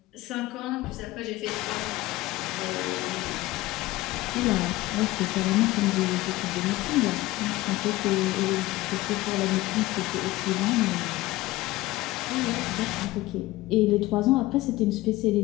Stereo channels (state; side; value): quieter; right; 18.4 dB